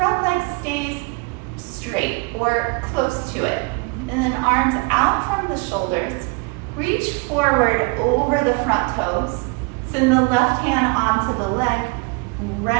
leg stays straight or close to it. And then arms out from the shoulders. Reach forward over the front toes. Send the left hand onto the leg.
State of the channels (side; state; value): left; quieter; 30.6 dB